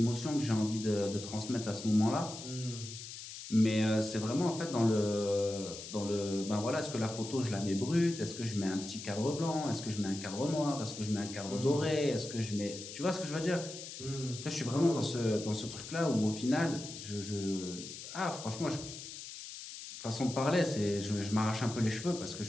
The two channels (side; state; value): left; noise; hiss, 11 dB below the sound